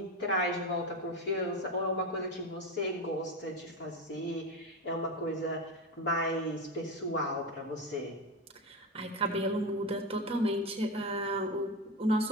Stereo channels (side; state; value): both; normal; correlation 0.19